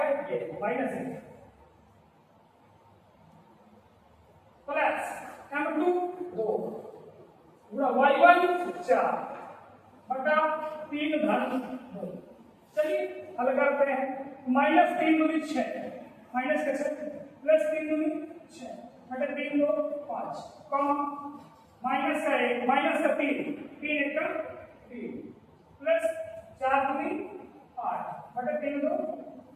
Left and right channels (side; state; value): both; identical; correlation 1.00